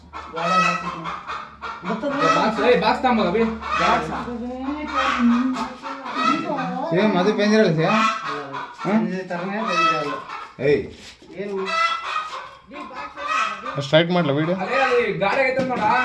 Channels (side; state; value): both; identical; correlation 1.00